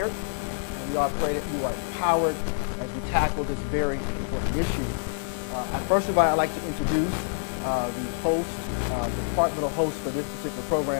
and we all pray that you are empowered as we tackle this very important issue. First of all, I'd like to introduce the host, the departmental host for this particular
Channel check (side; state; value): right; silent; digital silence